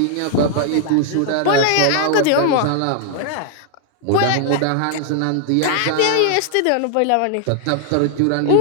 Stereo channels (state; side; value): different; both; correlation 0.00